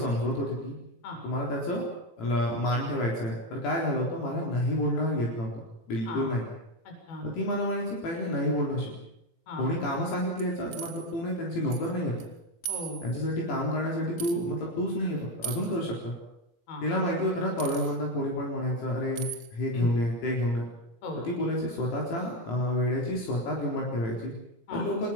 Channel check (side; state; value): right; late; 18 ms